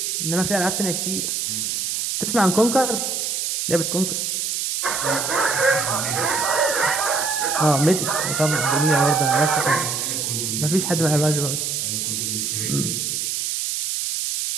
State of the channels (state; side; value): noise; right; hiss, 1 dB below the sound